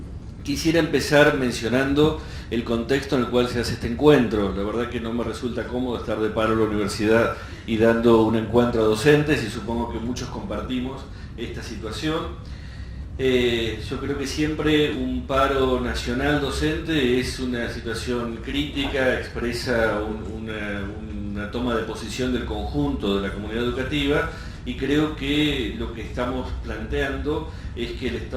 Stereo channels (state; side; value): identical; both; correlation 1.00